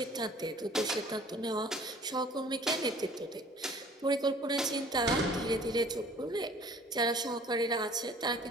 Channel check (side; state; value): both; normal; correlation 0.51